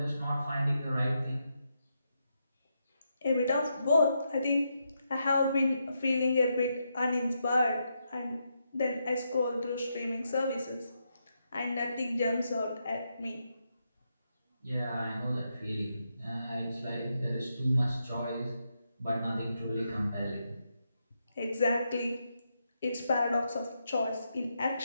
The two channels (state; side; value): inverted; both; correlation -0.82